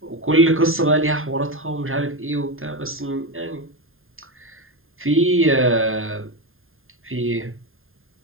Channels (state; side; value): late; left; 0.60 ms